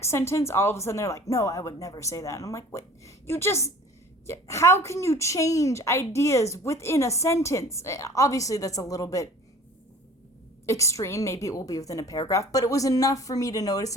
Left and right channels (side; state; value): both; normal; correlation 0.47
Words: sentence, all of a sudden they're like, no, I would never say that. And I'm like, wait, how can you change ideas within a sentence? Obviously, that's a little bit extreme. Maybe it will be within a paragraph, but it was enough for me to notice,